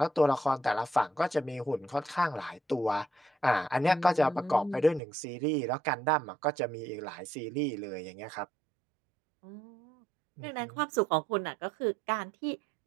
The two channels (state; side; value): drops out; left; at 5.0 s